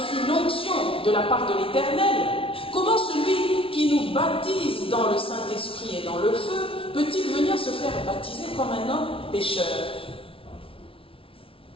l'onction de la part de l'Éternel, comment celui qui nous baptise dans le Saint-Esprit et dans le feu, peut-il venir se faire baptiser comme un homme pécheur?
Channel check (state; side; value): late; right; 0.26 ms